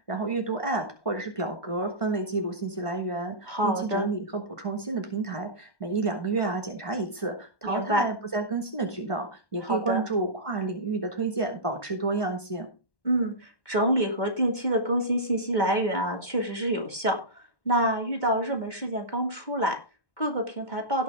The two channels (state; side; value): late; right; 1.1 ms